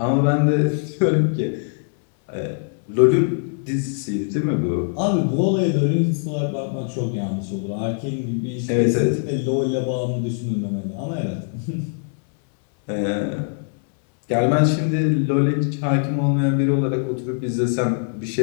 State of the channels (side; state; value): right; silent; 64 dB below the other